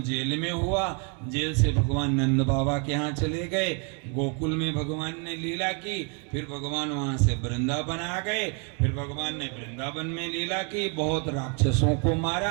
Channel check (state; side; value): quieter; left; 37.5 dB